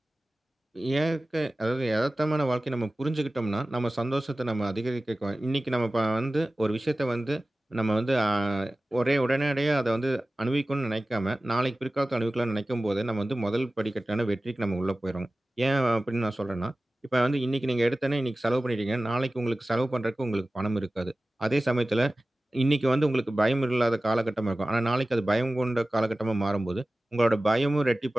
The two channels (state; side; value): normal; both; correlation 0.96